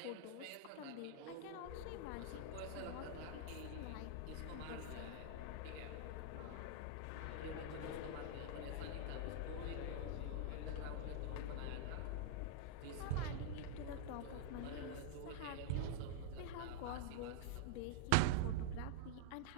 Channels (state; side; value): different; both; correlation -0.01